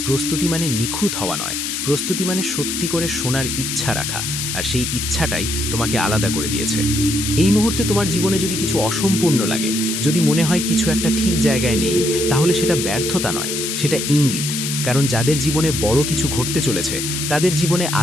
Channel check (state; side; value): noise; left; hiss, 3 dB below the sound